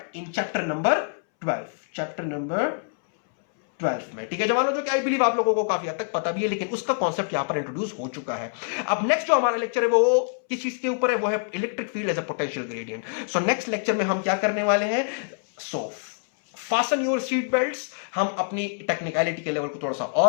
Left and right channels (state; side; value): silent; right; 61 dB below the other